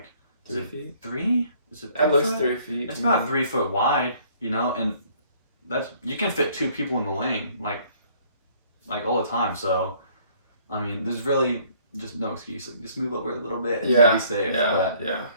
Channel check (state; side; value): inverted; both; correlation -0.60